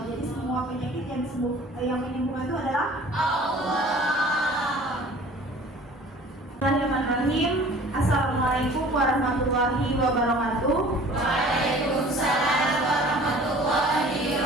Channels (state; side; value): normal; both; correlation 0.48